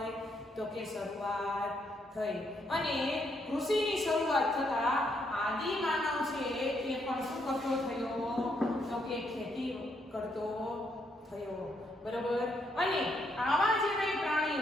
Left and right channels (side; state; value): both; normal; correlation 0.75